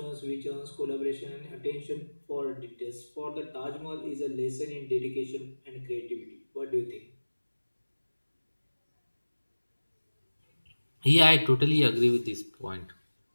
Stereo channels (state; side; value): inverted; both; correlation -1.00